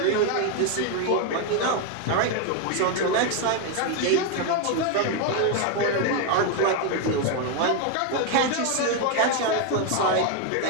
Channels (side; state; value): both; different; correlation 0.01